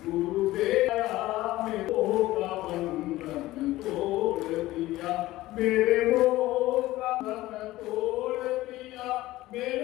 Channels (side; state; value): right; quieter; 17.0 dB